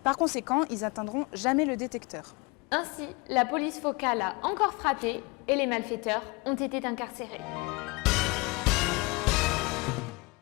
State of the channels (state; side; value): quieter; right; 25.7 dB